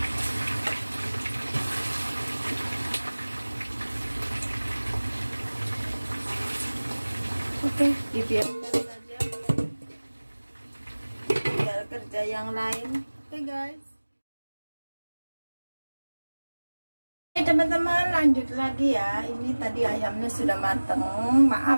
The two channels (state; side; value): inverted; both; correlation -1.00